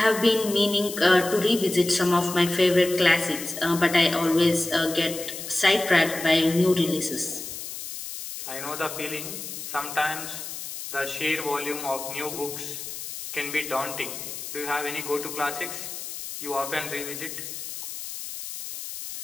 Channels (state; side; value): noise; left; hiss, 9 dB below the sound